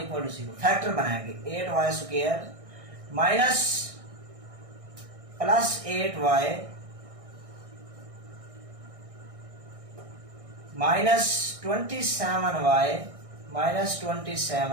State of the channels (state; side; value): late; left; 1.6 ms